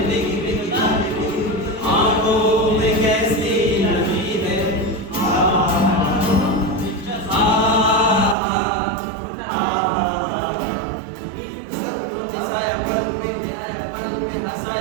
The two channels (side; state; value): left; drops out; at 8.3 s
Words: भीगी भीगी आज भीगी आंखों में कैसी नमी है